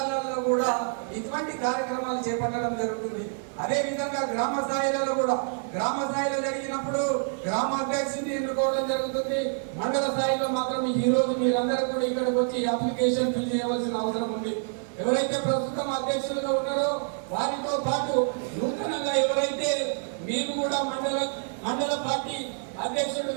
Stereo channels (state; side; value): silent; left; 60 dB below the other